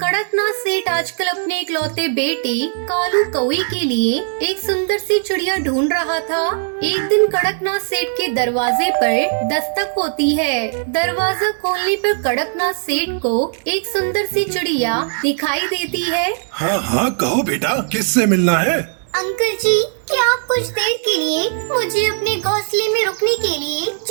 सेठ आजकल अपने इकलौते बेटे कालू कौवे के लिए एक सुंदर सी चिड़िया ढूंढ रहा था। एक दिन कड़कनाथ सेठ के दरवाजे पर दस्तक होती है। दरवाजा खोलने पर कड़कनाथ सेठ को एक सुंदर सी चिड़िया दिखाई देती है। हाँ हाँ कहो बेटा, किससे मिलना है? अंकल जी, क्या आप कुछ देर के लिए मुझे अपने घोंसले में रुकने के लिए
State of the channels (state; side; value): silent; left; digital silence